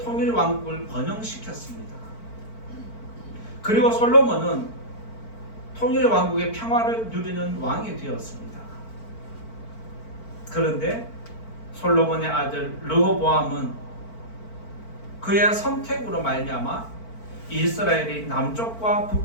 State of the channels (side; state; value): right; late; 4.5 ms